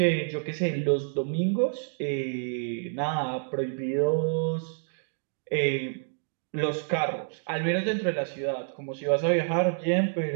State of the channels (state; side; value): silent; left; digital silence